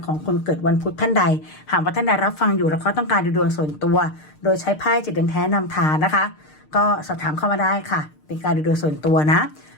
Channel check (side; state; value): right; late; 6.6 ms